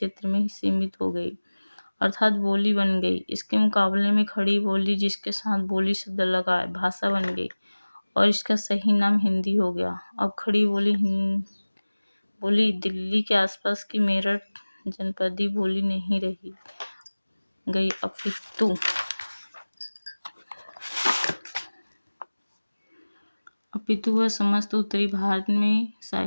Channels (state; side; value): inverted; both; correlation -1.00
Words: में ही सीमित हो गई, अर्थात बोली बन गई। इसके मुकाबले में खड़ी बोली, जिसके साथ बोली शब्द लगा है, भाषा बन गई और इसका सही नाम हिंदी हो गया। अब खड़ी बोली दिल्ली के आसपास की मेरठ जनपदी बोली नहीं रही गई, अपितु वह समस्त उत्तरी भारत में